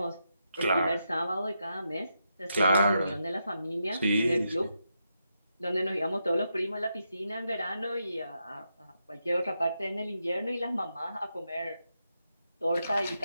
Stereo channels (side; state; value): both; inverted; correlation -0.84